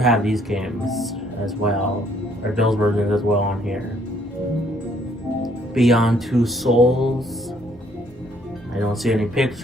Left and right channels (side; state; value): both; normal; correlation 0.65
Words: have these games as well, or those versions as well on here. Beyond Two Souls. I don't see any